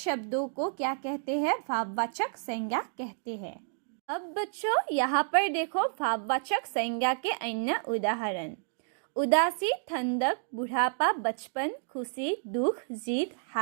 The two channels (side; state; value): left; silent; digital silence